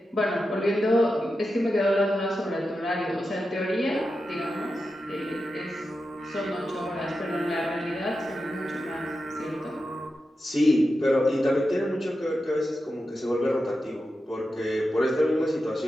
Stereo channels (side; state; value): both; normal; correlation 0.90